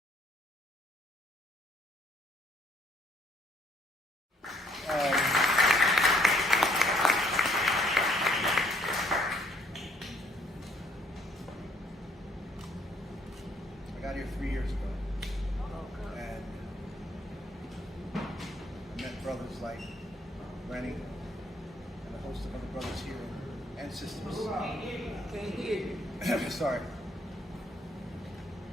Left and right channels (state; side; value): normal; both; correlation 0.66